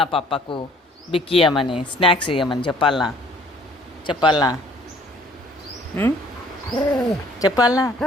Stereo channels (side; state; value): both; normal; correlation 0.57